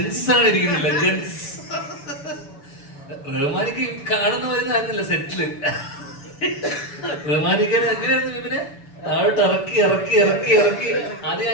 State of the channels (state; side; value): late; right; 6.9 ms